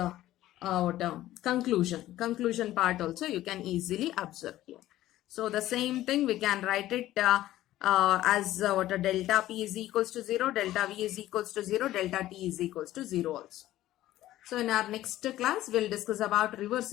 conclusion part also you can easily observe here. So the same thing we can write it as delta P is equals to 0, delta V is equals to 0, delta T is equals to 0 also. So in our next class, we'll discuss about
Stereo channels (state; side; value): quieter; right; 14.6 dB